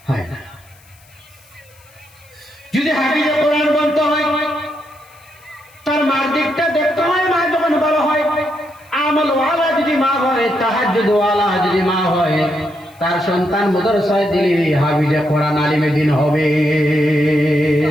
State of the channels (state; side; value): noise; left; hiss, 29 dB below the sound